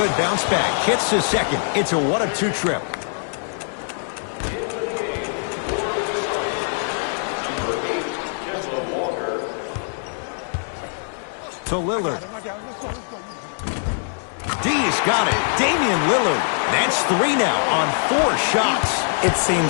bounce back. Hits the second. It's a 1 of 2 trip. To Lillard. D's got it. Damian Lillard. That's 3 now on 4 shots. It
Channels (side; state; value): right; silent; digital silence